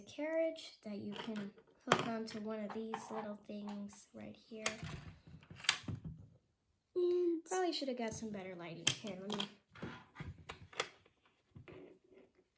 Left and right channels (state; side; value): identical; both; correlation 1.00